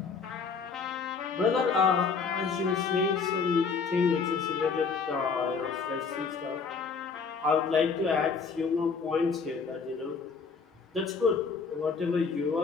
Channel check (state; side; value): quieter; right; 5.3 dB